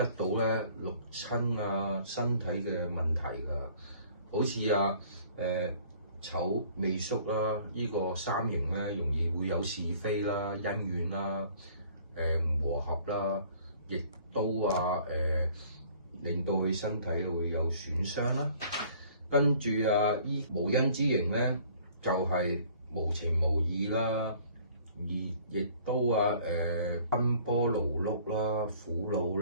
到咧六親身體嘅問題㗎。好似丑未戌啦，呢個三刑咧容易會有是非啦、恩怨啦、唔和合啦，亦都令到佢身體會有損傷啦。跟住依無因之刑咧，就係無情無義啦，而亦都奔波勞碌啦、苦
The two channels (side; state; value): both; inverted; correlation -0.54